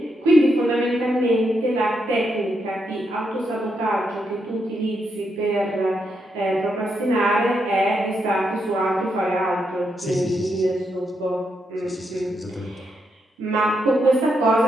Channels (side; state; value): both; normal; correlation 0.81